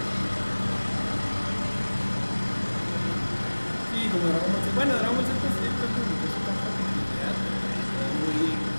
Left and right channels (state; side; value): inverted; both; correlation -1.00